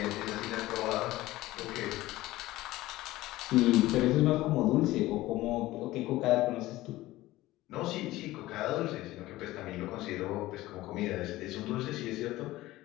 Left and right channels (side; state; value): right; quieter; 17.3 dB